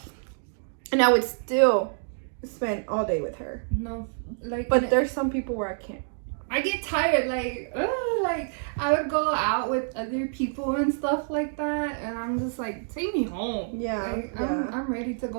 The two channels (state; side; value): silent; left; digital silence